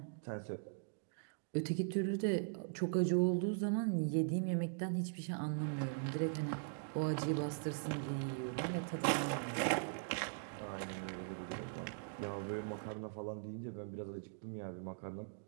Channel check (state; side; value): silent; left; digital silence